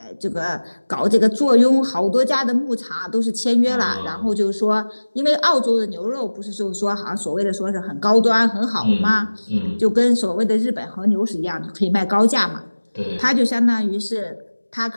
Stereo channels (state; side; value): inverted; both; correlation -1.00